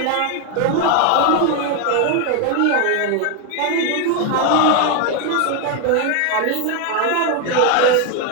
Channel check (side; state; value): both; different; correlation 0.01